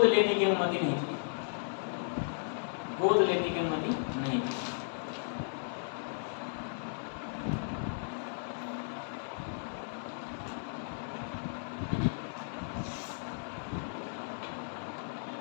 लेने की अनुमति नहीं थी, गोद लेने की अनुमति नहीं थी।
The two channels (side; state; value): right; silent; digital silence